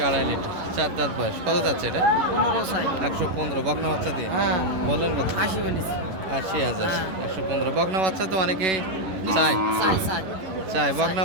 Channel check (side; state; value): left; late; 11 ms